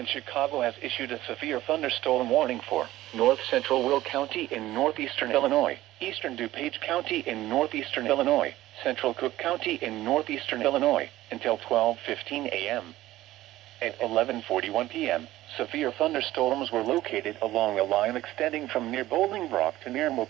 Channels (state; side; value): quieter; left; 15.7 dB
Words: Chicago has issued a severe thunderstorm warning for north central Will County in northeastern Illinois, eastern DuPage County in northeastern Illinois, central Cook County in northeastern Illinois, until 12:15 a.m. At 11:41 p.m., severe thunderstorms were located along a line extending from near Bolingbrook to near